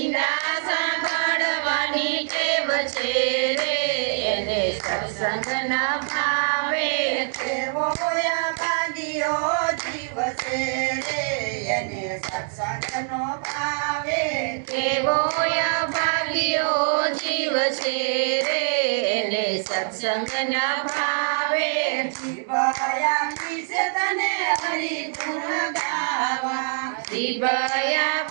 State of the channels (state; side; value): silent; left; digital silence